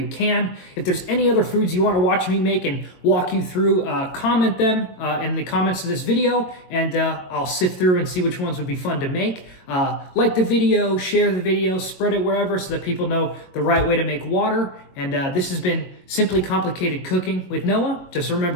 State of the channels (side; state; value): right; late; 22 ms